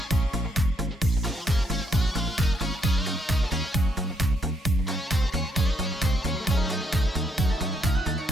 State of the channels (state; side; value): normal; both; correlation 0.73